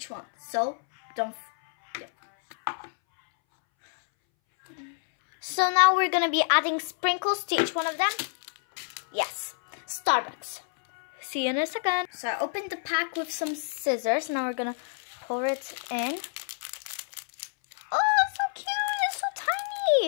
one. So So now we're gonna be adding sprinkles to each one of them. Yes, Starbucks. See you in a second. So I opened the pack with some scissors. Now we're gonna pour it in. Oh, it's so cute! It's so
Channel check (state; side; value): silent; right; 59 dB below the other